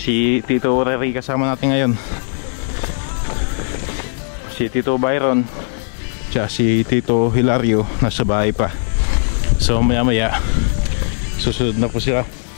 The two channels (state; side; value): silent; right; digital silence